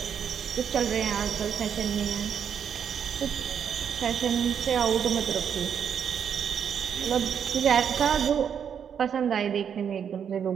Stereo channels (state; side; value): quieter; left; 7.9 dB